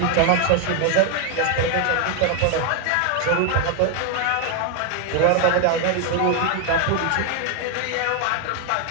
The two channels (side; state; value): both; different; correlation 0.01